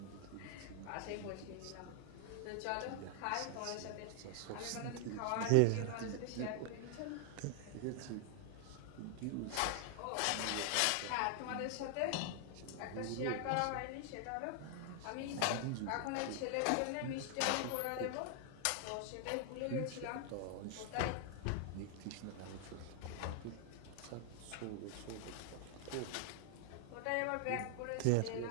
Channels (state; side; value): different; both; correlation 0.00